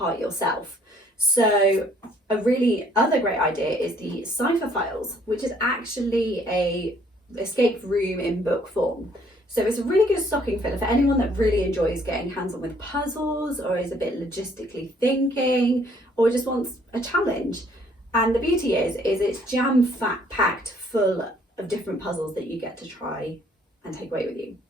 yourself. So a really other great idea is the Cipher Files, which is actually a escape room in book form. So it's a really good stocking filler for anyone that really enjoys getting hands-on with puzzles or is a bit logistically thinking or just wants a challenge. And the beauty is it's jam-packed full of different puzzles that you get to try and take away with you.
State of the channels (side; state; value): both; normal; correlation 0.62